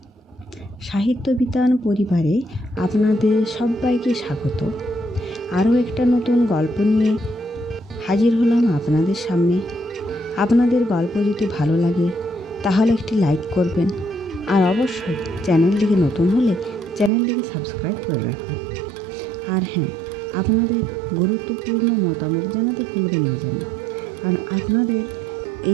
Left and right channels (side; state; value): left; drops out; at 17.1 s